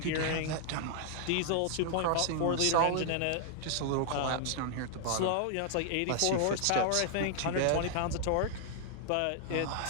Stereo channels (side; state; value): both; different; correlation 0.00